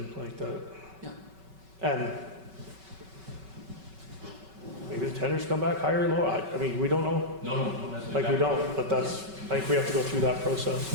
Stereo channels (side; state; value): left; late; 5.3 ms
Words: like that. Yeah. And maybe the tenders come back higher or lower, I mean, we don't know, No, that's. like, we don't, but that's, I think we have to go through that process.